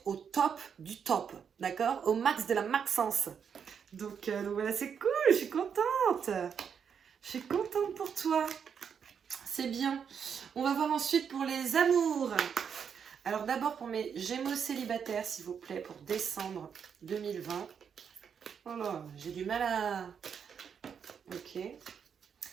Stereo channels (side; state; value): left; quieter; 7.2 dB